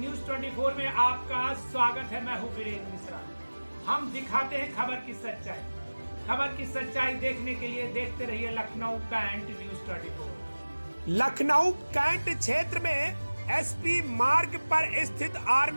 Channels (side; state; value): both; inverted; correlation -1.00